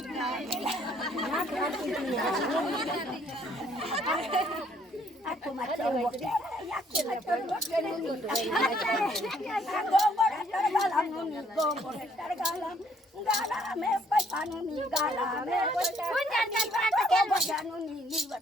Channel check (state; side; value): normal; both; correlation 0.65